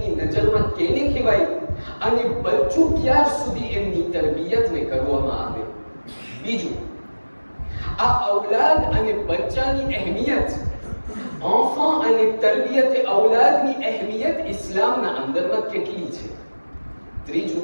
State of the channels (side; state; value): both; inverted; correlation -1.00